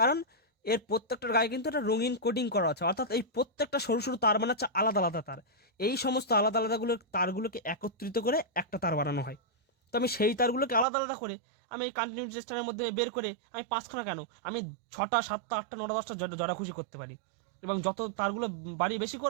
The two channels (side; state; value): left; drops out; at 10.9 s